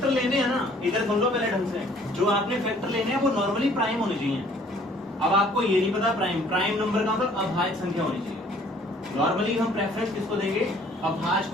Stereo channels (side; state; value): both; normal; correlation 0.57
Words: लेने हैं ना इधर सुन लो पहले ढंग से जो आपने फैक्टर लेने हैं वो नॉर्मली प्राइम होने चाहिए अब आपको ये नहीं पता प्राइम नंबर का मतलब अभाज्य संख्या होनी चाहिए नॉर्मली हम प्रेफरेंस किसको देंगे अभाज्य